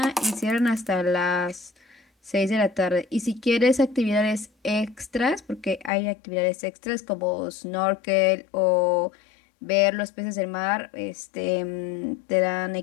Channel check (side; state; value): right; drops out; at 5.9 s